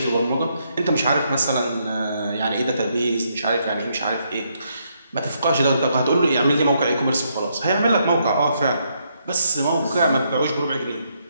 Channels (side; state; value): both; inverted; correlation -0.75